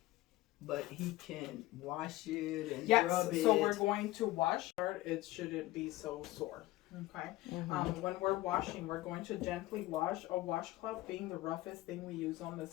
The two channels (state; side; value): quieter; right; 17.6 dB